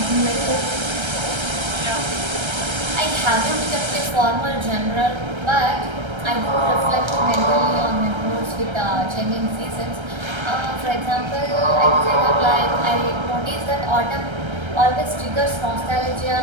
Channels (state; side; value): late; left; 1.3 ms